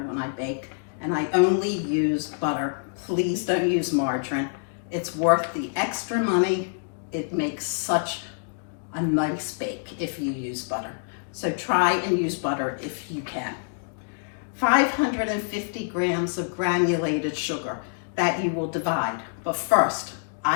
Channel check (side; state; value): right; silent; digital silence